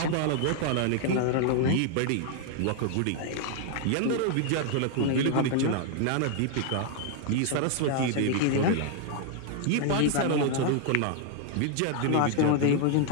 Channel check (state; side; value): different; both; correlation 0.00